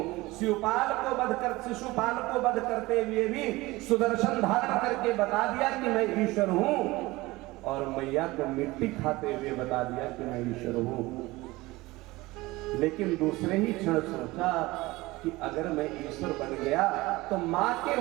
शिशुपाल को वध करते हुए भी सुदर्शन धारण करके बता दिया कि मैं ईश्वर हूं, और मैया को मिट्टी खाते हुए बता दिया कि मैं ईश्वर हूं। लेकिन दूसरे ही क्षण सोचा कि अगर मैं ईश्वर बन गया तो माँ के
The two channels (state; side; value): quieter; left; 20.5 dB